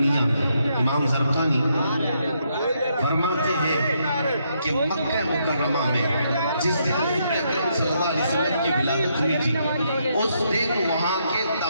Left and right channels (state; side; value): inverted; both; correlation -0.76